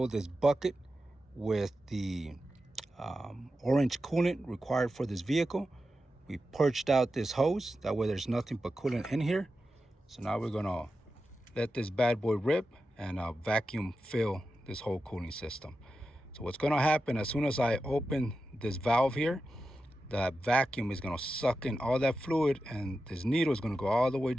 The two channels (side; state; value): both; normal; correlation 0.91